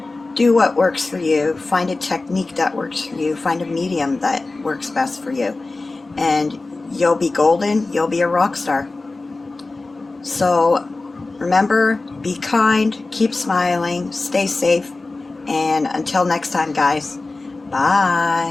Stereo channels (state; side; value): quieter; right; 3.4 dB